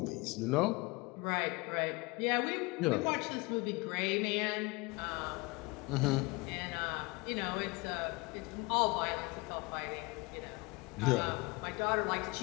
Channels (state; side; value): quieter; right; 25.9 dB